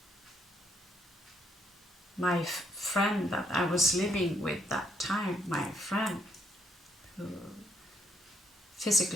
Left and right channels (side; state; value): both; normal; correlation 0.73